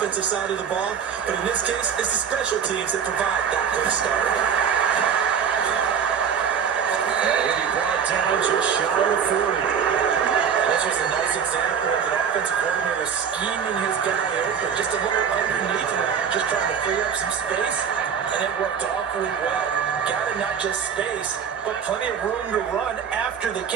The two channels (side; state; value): left; quieter; 7.3 dB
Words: side of the ball, but in this case, it's the special teams that provide that quick start. And he'll be brought down just shy of 40. That's just a nice example of an offensive coordinator scheming his guy open, just a little underneath him, just trying to free up some space, and it worked awfully well. Got it, not just space, but plenty of room to run after the